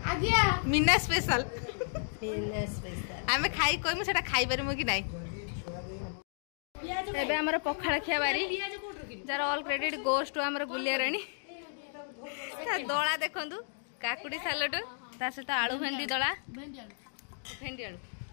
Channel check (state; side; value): silent; right; digital silence